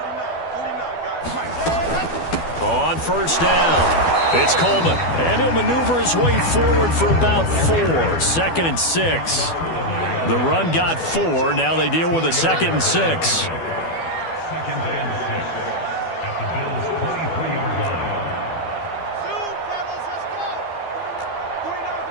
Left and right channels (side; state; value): right; late; 12 ms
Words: guys. Mike. On first down, it's Coleman. And he'll maneuver his way forward for about 4. 2nd and 6. The run got 4. Now they deal with a 2nd and 6. 2nd and 6 at the Bills' 23-yard line. Zoom, fellas, let's go. 49's